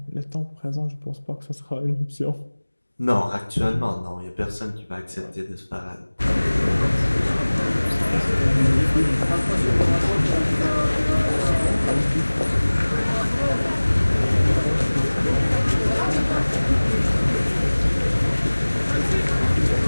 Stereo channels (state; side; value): inverted; both; correlation -1.00